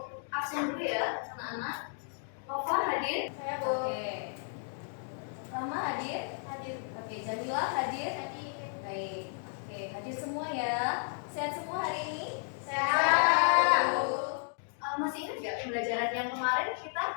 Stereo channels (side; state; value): right; silent; 56 dB below the other